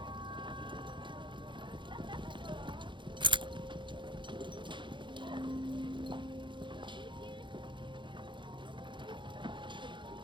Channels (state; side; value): late; left; 0.23 ms